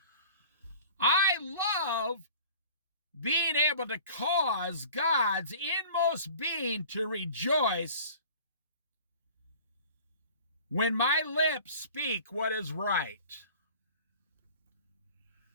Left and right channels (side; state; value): both; inverted; correlation -0.45